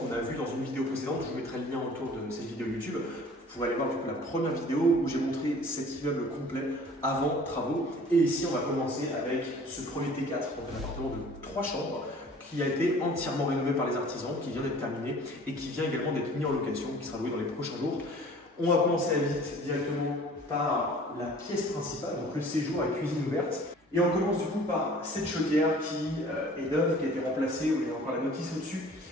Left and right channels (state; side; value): normal; both; correlation 0.49